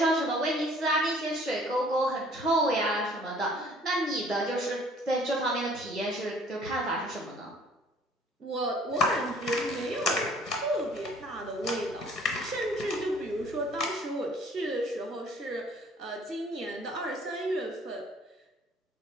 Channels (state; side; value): normal; both; correlation 0.55